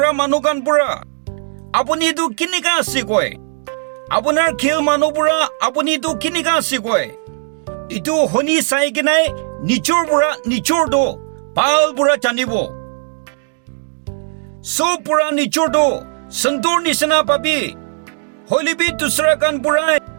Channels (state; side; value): silent; left; digital silence